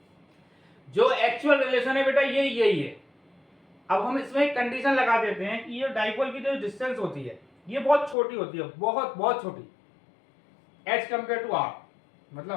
जो एक्चुअल रिलेशन है बेटा ये यही है। अब हम इसमें एक कंडीशन लगा देते हैं कि ये डाइपोल की जो डिस्टेंस होती है ये बहुत छोटी होती है, बहुत बहुत छोटी एज कंपेयर टू आर,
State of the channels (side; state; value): right; drops out; at 8.2 s